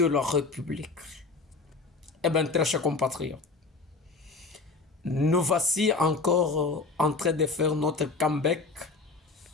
la République. Eh bien, très chers compatriotes, nous voici encore en train de faire notre comeback.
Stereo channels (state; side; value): quieter; right; 4.0 dB